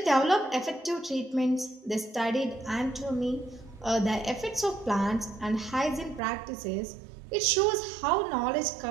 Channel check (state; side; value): drops out; left; at 6.2 s